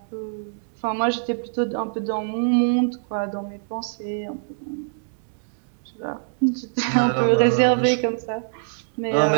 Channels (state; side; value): silent; left; 63 dB below the other